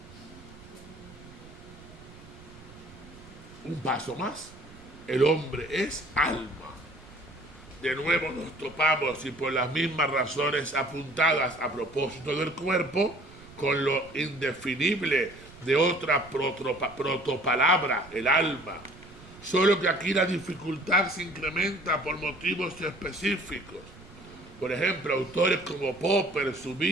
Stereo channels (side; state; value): right; noise; rumble, 20 dB below the sound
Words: Un paso más. el hombre es alma. De nuevo nos topamos, y por las mismas razones apuntadas a propósito del cuerpo, con lo indefinible de otra protopalabra, el alma. Solo que aquí la dificultad se incrementa por motivos específicos. Por ejemplo, autores como Popper,